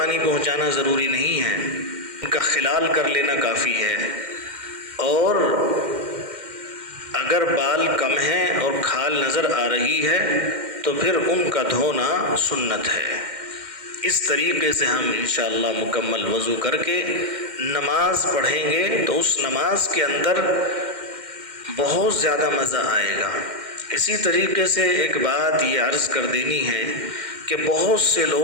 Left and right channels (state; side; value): late; left; 2.1 ms